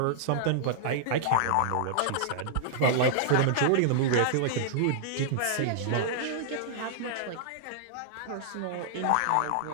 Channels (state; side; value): different; both; correlation -0.01